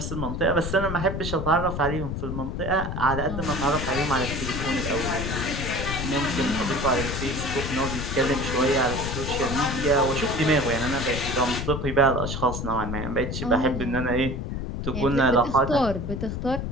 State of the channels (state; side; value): noise; left; rumble, 4 dB below the sound